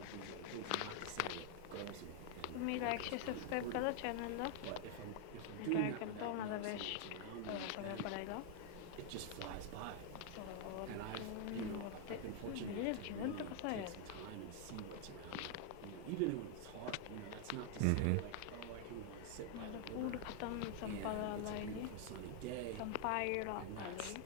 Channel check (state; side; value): different; both; correlation 0.00